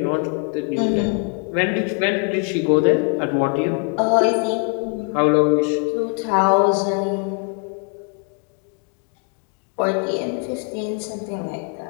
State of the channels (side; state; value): right; quieter; 38.8 dB